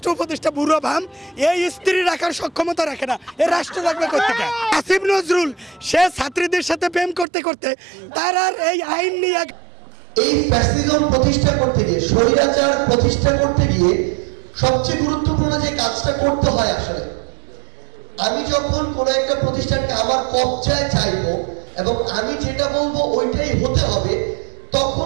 উপদেষ্টা বুড়ো ভাম, এই স্ত্রী রাখার সক্ষমতা রাখে না, এ রাষ্ট্র রাখবে কোথেকে? আসিফ নজরুল সে ছাত্রীদের সাথে প্রেম করতে করতে তার আর এই আইন নিয়ে এই ফ্যাসিজম প্রতিষ্ঠা করতে গিয়ে, স্বৈরাচার প্রতিষ্ঠা করতে গিয়ে সবচেয়ে গুরুত্বপূর্ণ যে কাজটা করতে হয়, আসলে আমি যখন কোনো একটা প্রতিষ্ঠানকে আমার কবজায় চাইবো এবং আমি যেটা বলবো ওইটাই হতে হবে,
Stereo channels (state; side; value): drops out; left; at 7.2 s